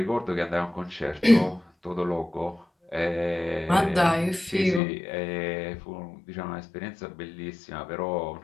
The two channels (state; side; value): drops out; right; at 4.8 s